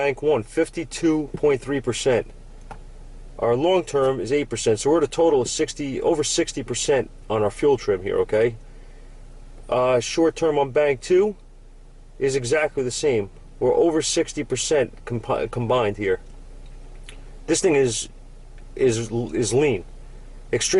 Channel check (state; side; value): identical; both; correlation 1.00